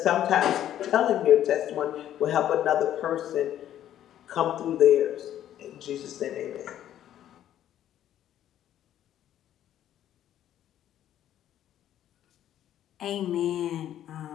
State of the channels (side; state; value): right; quieter; 11.5 dB